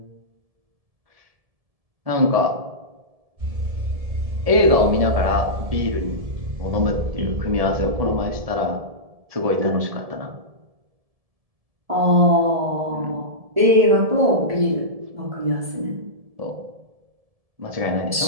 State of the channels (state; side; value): late; left; 1.7 ms